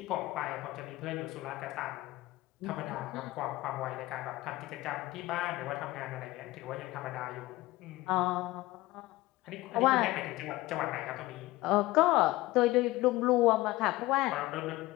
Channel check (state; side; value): quieter; right; 18.7 dB